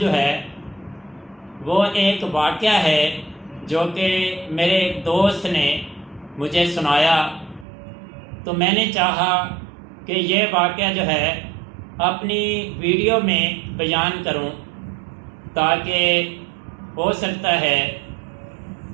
ہے وہ ایک واقعہ ہے جو کہ میرے ایک دوست نے مجھے سنایا، تو میں نے چاہا کہ یہ واقعہ جو ہے اپنی ویڈیو میں بیان کروں، تاکہ ہو سکتا ہے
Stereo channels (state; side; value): drops out; left; at 7.7 s